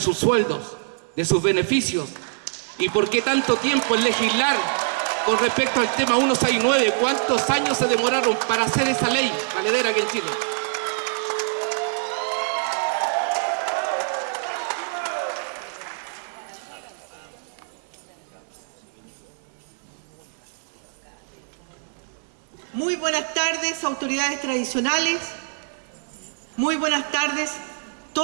sueldos, de sus beneficios? ¿Y por qué tanto tiempo en legislar con respecto al tema 169? ¿Cuántos años se demoraron para hacer esa ley valedera aquí en Chile? Muy buenas tardes, autoridades tradicionales. Muy buenas tardes,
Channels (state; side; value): silent; left; 62 dB below the other